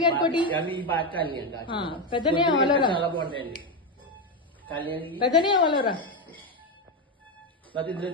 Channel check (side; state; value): both; normal; correlation 0.09